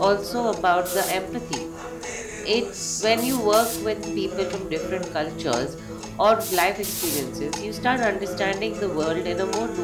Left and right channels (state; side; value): identical; both; correlation 1.00